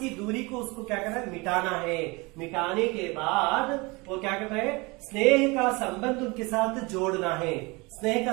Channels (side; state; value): left; quieter; 25.8 dB